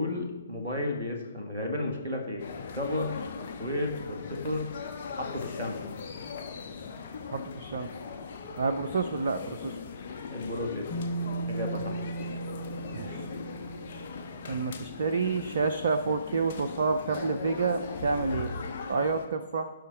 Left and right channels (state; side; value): inverted; both; correlation -0.66